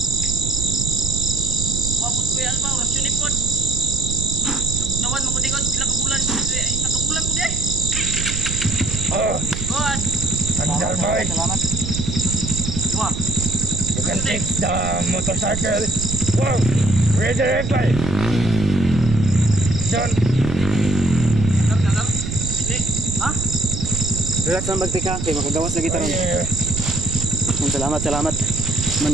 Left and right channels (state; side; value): noise; right; rumble, 5 dB below the sound